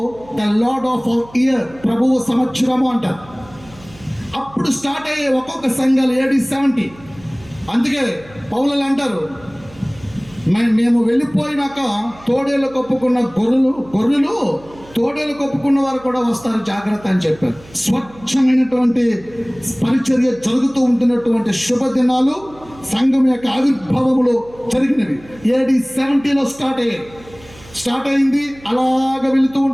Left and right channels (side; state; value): right; noise; hum, 22 dB below the sound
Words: ద లార్డ్ ఆఫ్ ఇయర్, ప్రభువు సంవత్సరము అంటారు. అప్పుడు స్టార్ట్ అయ్యే ఒక్కొక్క సంఘాలు AD 70. అందుకే పౌలు అంటారు, మేము వెళ్ళిపోయినాక తోడేళ్ళు కప్పుకున్న గొర్రెలు తోడేలు కప్పుకున్న వారు కూడా వస్తారు, జాగ్రత్త అని చెప్పారు. స్వచ్ఛమైనటువంటి పరిచర్య జరుగుతూ ఉంటున్నటువంటి శుభదినాలు సంఘం యొక్క ఆవిర్భావములో జరిగినవి. AD 70లో స్టార్ట్ అయింది. అలాగ వెళుతూ